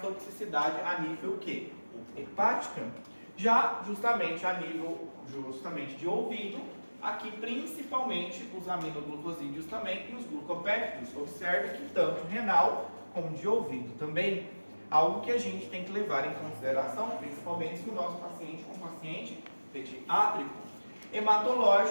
toxicidade a nível o quê? Hepática. Já justamente a nível de ouvido, Aqui, principalmente, os aminoglucosídeos também e os glucopéptidos. Observe que tanto renal como de ouvido também. Algo que a gente tem que levar em consideração, principalmente se o nosso paciente é um paciente pediátrico.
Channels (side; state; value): both; inverted; correlation -1.00